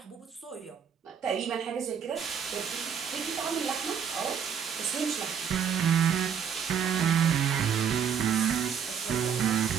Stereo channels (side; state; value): left; quieter; 7.6 dB